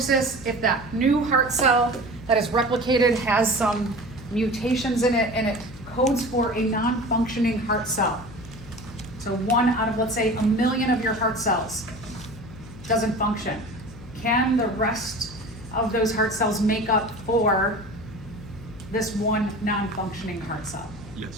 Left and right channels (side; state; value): left; noise; hum, 17 dB below the sound